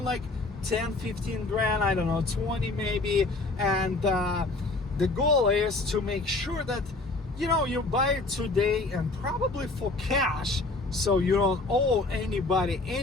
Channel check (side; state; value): right; quieter; 3.3 dB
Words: like 10, 15 grand, I don't know, 20 maybe. And the goal is to make sure that, you know, you buy it today and probably for cash, so you don't owe anybody